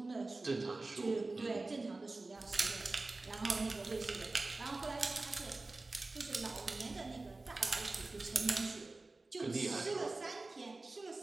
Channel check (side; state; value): left; quieter; 3.3 dB